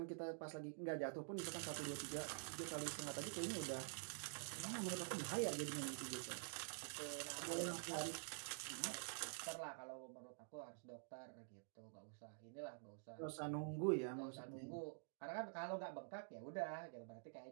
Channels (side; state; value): left; silent; digital silence